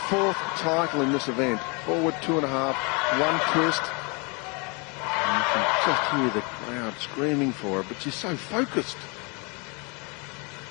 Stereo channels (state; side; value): quieter; right; 31.5 dB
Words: title in this event. Forward 2.5, 1 twist. And you can just hear the crowd screaming for her, but she's so focused.